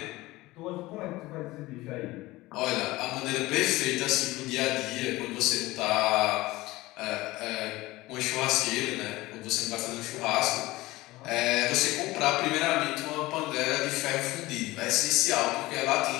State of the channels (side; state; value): right; quieter; 19.3 dB